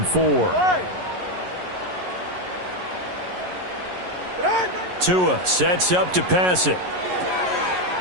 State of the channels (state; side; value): late; left; 11 ms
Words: 4. Tua sets up to pass it.